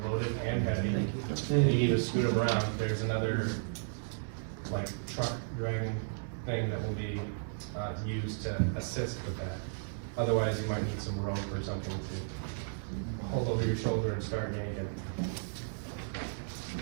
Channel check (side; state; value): left; silent; digital silence